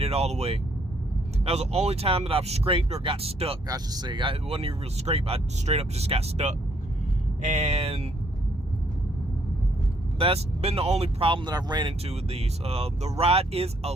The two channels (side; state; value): both; normal; correlation 0.68